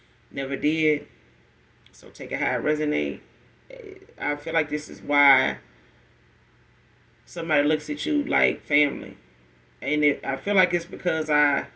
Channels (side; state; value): both; identical; correlation 1.00